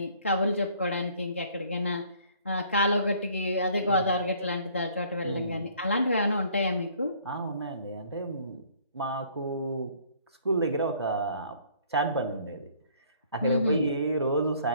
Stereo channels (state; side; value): inverted; both; correlation -0.58